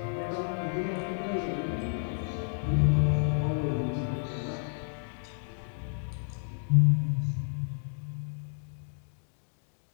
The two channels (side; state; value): right; silent; digital silence